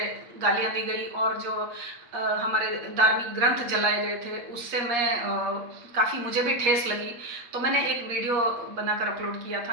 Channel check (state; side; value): late; left; 8.4 ms